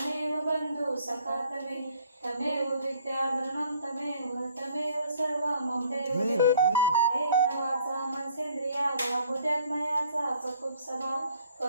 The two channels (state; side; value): inverted; both; correlation -0.58